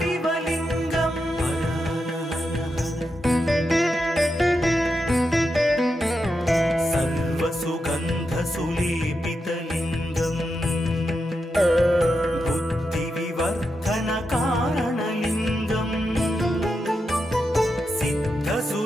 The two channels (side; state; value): both; normal; correlation 0.87